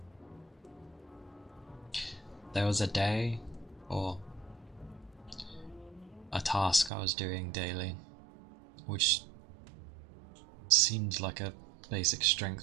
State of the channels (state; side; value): drops out; left; at 6.9 s